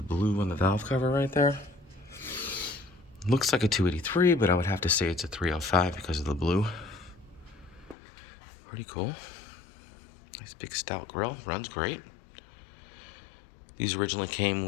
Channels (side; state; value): right; drops out; at 8.0 s